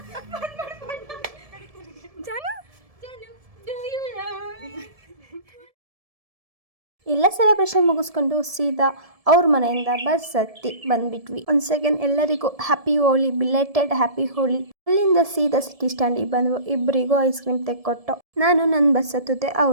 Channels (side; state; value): left; late; 1.7 ms